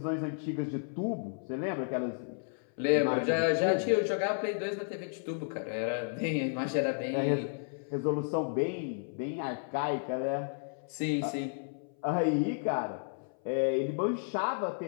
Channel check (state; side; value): silent; right; 56 dB below the other